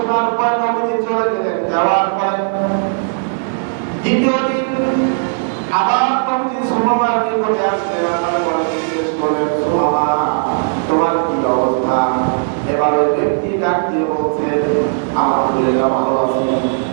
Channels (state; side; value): silent; left; 69 dB below the other